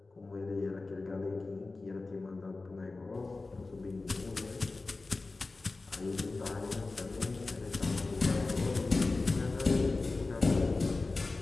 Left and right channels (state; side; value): quieter; right; 3.5 dB